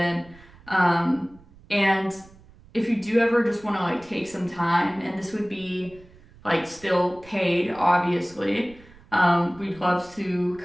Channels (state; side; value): noise; right; rumble, 24 dB below the sound